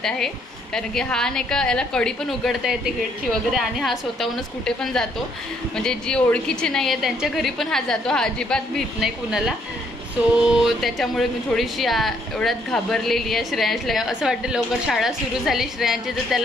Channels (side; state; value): both; normal; correlation 0.69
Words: आहे. कारण की हा नाही का याला कडी पण उघडता येते गेटची वगैरे. आणि हा स्वतःहूनच कुठे पण जातो. म्हणजे जी ओळखीची नाही आहे त्यांच्या घरी पण हा जातो. हा अजिबात भीत नाही कुणाला. सो त्याच्यामुळे मी थोडीशी एवढ्यात घाबरलेली आहे. श्रेयांशला असं वाटतं लवकर शाळा सुरू झाली श्रेयांची तर